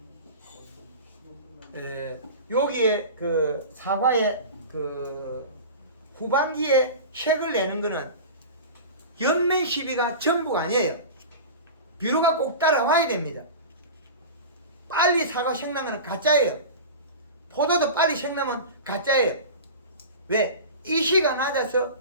여기에 사과의 후반기에 색을 내는 거는 연면 시비가 전부가 아니에요. 비료가 꼭 따라와야 됩니다. 빨리 사과 색나는 거는 가짜예요. 포도도 빨리 색나면 가짜예요. 왜? 이시가 낮아서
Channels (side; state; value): both; inverted; correlation -0.31